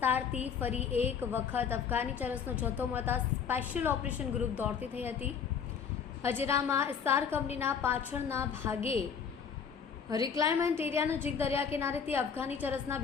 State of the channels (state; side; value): quieter; right; 6.9 dB